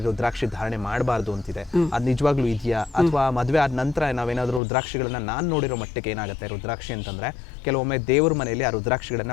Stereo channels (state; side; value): drops out; right; at 4.6 s